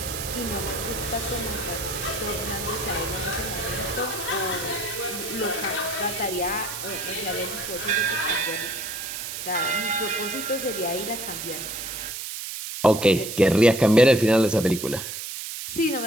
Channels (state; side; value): noise; right; hiss, 7 dB below the sound